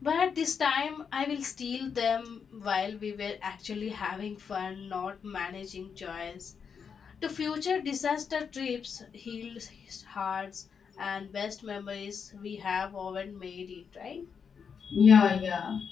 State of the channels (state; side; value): quieter; right; 6.5 dB